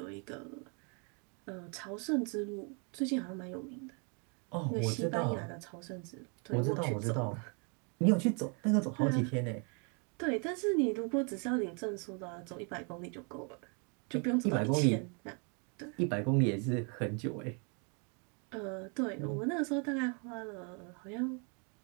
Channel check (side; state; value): left; quieter; 37.2 dB